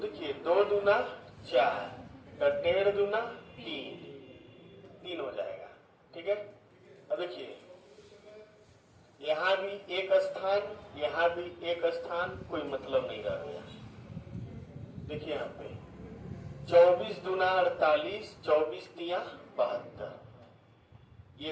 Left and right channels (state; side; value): identical; both; correlation 1.00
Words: 2 दूना 4, 1.5 दूना 3 हो जाएगा। ठीक है, अब देखिए यहाँ भी एक स्थान, यहाँ भी एक स्थान, कोई मतलब नहीं रह गया। देखिए यहाँ पे 24 दूना 48, 24 तिया 72,